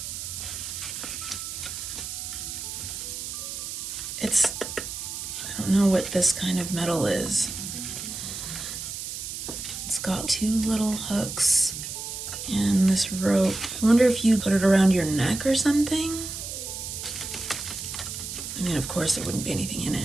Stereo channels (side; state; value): right; noise; hiss, 7 dB below the sound